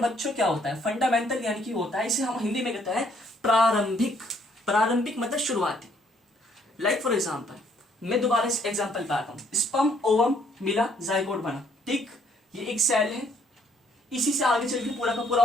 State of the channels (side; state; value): both; normal; correlation 0.66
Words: क्या होता है, फंडामेंटल यानी कि होता है, इसे हम हिंदी में कहते हैं प्रारंभिक। प्रारंभिक मतलब शुरुआती। लाइक फॉर एग्जाम्पल, मैं दोबारा इस एग्जाम्पल पे आता हूँ, स्पर्म ओवम मिला, जाइगोट बना। ठीक, ये एक सेल है, इसी से आगे चल के पूरा का पूरा